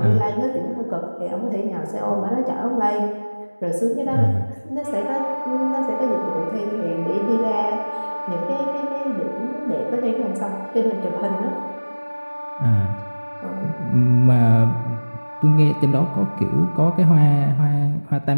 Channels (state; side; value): inverted; both; correlation -1.00